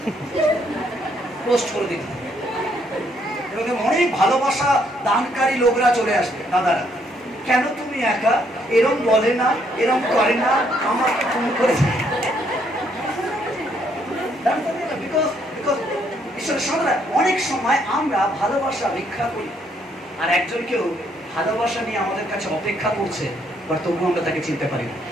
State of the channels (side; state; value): both; normal; correlation 0.70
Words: পোস্ট করে দিন, এবং অনেক ভালোবাসা দানকারী লোকরা চলে আসবে, দাদারা কেন তুমি একা, এরম বলে না, এরম করে না, আমাকে ফোন করে। অনেক সময় আমরা ভালোবাসা ভিক্ষা করি, আর একজনকেও ভালোবাসা নিয়ে আমাদের কাছে অপেক্ষা করছে, বাট তবুও আমরা তাকে চিনতে পারি না।